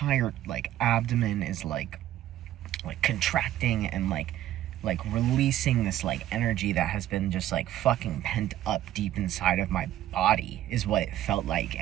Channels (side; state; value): left; quieter; 12.9 dB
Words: like abdomen is like contracting and like releasing this like energy that has been just like fucking pent up deep inside of my body, is what it felt like.